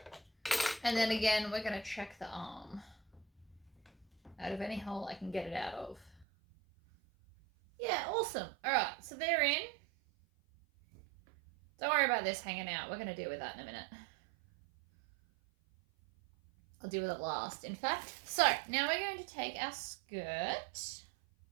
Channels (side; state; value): left; drops out; at 6.2 s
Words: And then again, we're going to check the arm. Out of any hole I can get it out of. Yeah, awesome. Alright, so they're in. Don't worry about this hanging out. We're going to deal with that in a minute. I'll deal with it last, in fact. So, now we're going to take our skirt.